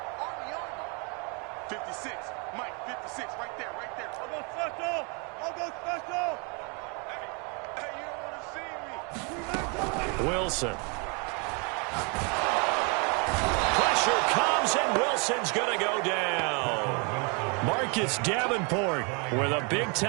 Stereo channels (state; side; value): quieter; left; 34.1 dB